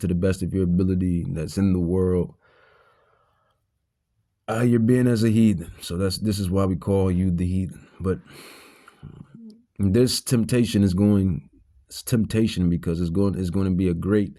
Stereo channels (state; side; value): identical; both; correlation 1.00